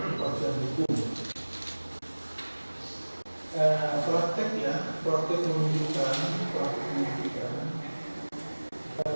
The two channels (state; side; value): inverted; both; correlation -1.00